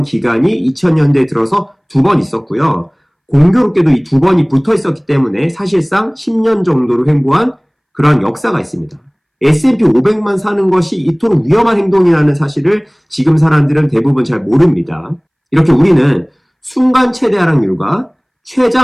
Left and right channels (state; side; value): identical; both; correlation 1.00